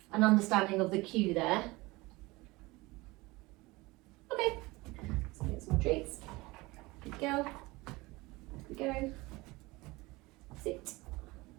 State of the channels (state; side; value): quieter; left; 22.1 dB